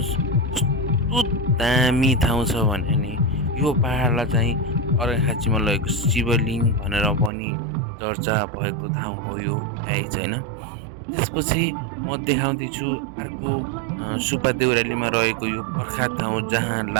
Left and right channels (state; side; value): drops out; left; at 7.3 s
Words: कस्तो दामी ठाउँ छ भने नि यो पहाडलाई चाहिँ अर्घाखाँचीमा रहेको शिवलिङ्ग भनेर पनि चर्चा भएको ठाउँ हो यो गाइज होइन। त्यसपछि म देखाउँदैछु अर्को सुब्बा देउरालीमा रहेको यो प्रख्यात ठाउँ जहाँ